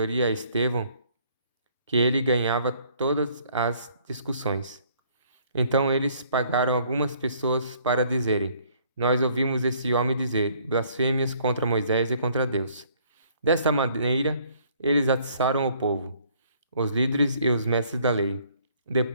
a Estevão que ele ganhava todas as discussões. Então eles pagaram algumas pessoas para dizerem: Nós ouvimos esse homem dizer blasfêmias contra Moisés e contra Deus. Desta maneira, eles atiçaram o povo, os líderes e os mestres da lei.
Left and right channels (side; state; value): both; inverted; correlation -0.62